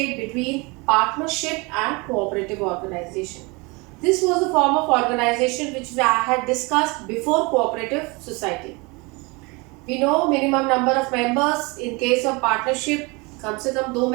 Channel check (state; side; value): quieter; left; 27.2 dB